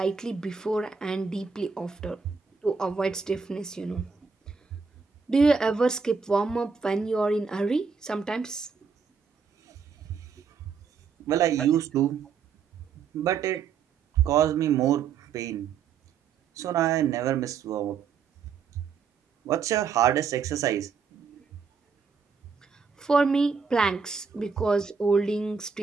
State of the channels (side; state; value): left; quieter; 5.8 dB